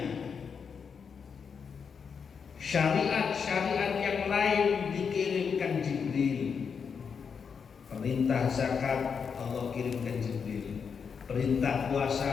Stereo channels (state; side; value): quieter; right; 6.3 dB